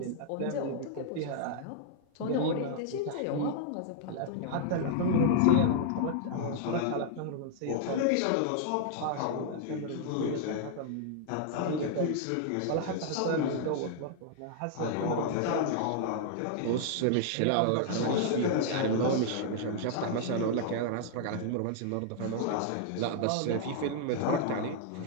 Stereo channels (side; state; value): both; different; correlation -0.01